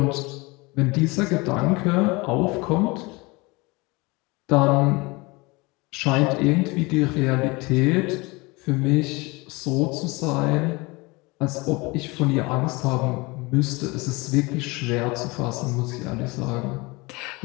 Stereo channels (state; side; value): quieter; right; 24.9 dB